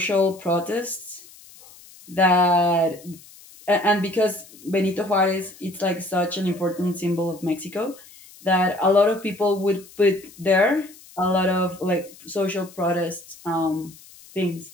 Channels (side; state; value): left; noise; hiss, 22 dB below the sound